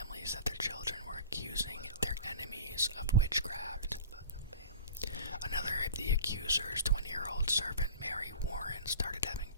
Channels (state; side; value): inverted; both; correlation -0.39